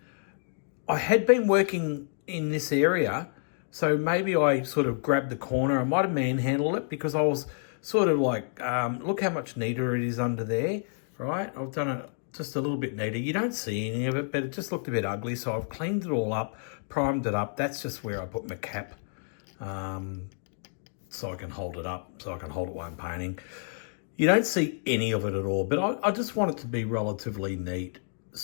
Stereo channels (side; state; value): right; silent; digital silence